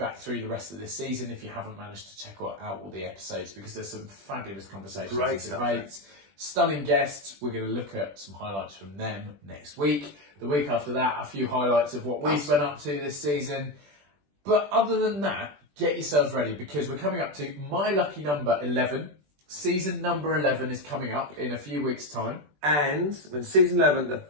through the rest of this season if you haven't managed to check out all the episodes, because there's some fabulous conversations, great debates, stunning guests. We're going to look at some highlights from them next week. The week after that, a few highlights of what we've been up to this season. But other than that, get yourselves ready because we're coming up to my lucky number 11. Season number 11 is coming up in a few weeks' time. And when season 11, the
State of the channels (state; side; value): late; left; 20 ms